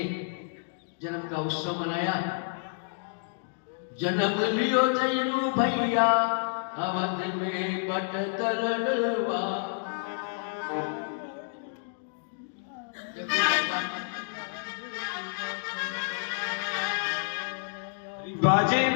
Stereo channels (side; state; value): right; silent; digital silence